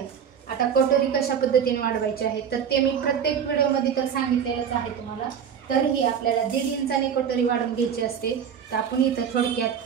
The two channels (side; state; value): left; quieter; 7.8 dB